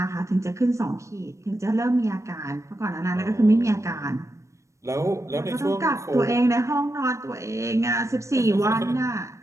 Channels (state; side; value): late; left; 0.15 ms